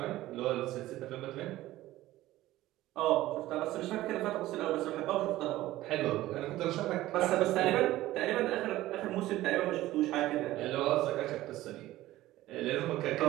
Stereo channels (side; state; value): left; quieter; 16.0 dB